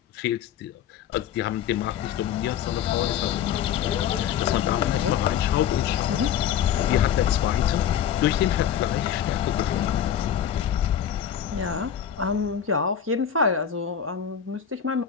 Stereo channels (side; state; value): right; quieter; 9.1 dB